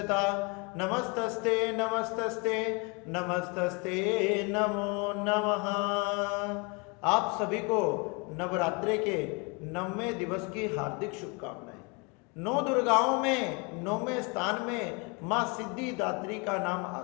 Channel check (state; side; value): quieter; right; 31.1 dB